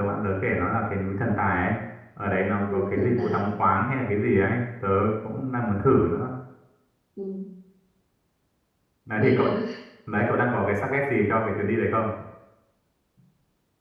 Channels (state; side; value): identical; both; correlation 1.00